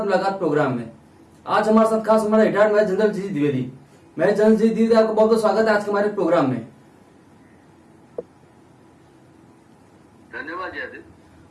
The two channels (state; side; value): identical; both; correlation 1.00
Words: मुलाकात प्रोग्राम में। आज हमारे साथ खास हमारा रिटायर्ड मेजर जनरल जी द्विवेदी। मेजर जनरल जी द्विवेदी, आपका बहुत बहुत स्वागत है आज के हमारे प्रोग्राम में। धन्यवाद जयदेव।